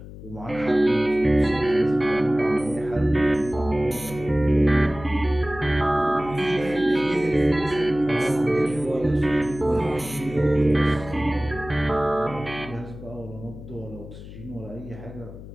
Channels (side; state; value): left; noise; hum, 14 dB below the sound